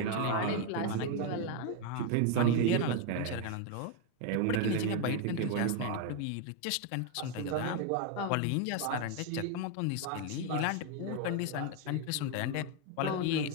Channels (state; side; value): different; both; correlation 0.01